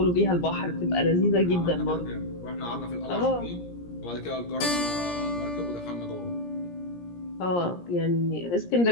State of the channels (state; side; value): late; right; 17 ms